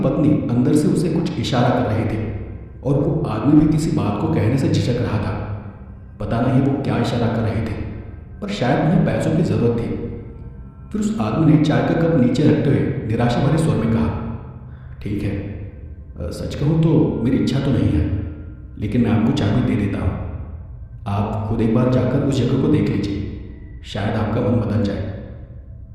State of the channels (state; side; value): identical; both; correlation 1.00